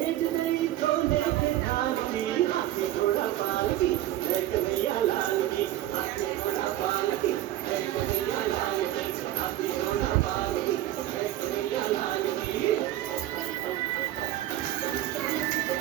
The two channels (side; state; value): left; quieter; 14.0 dB